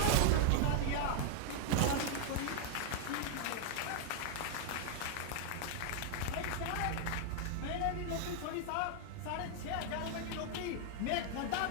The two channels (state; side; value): different; both; correlation 0.00